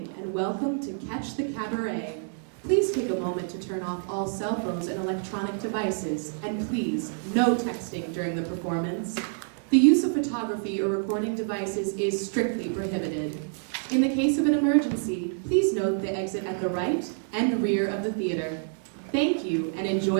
and welcome to Catch the Cabaret. Please take a moment to turn off all cell phones and electronic devices, and please, no texting during the performance. The use of photography or recording devices is strictly prohibited. In the case of an emergency, please note the exit at the right and rear of the theater. Thank you, and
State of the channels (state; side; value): silent; left; digital silence